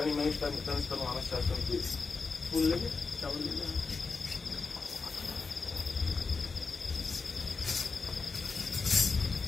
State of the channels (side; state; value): right; quieter; 4.5 dB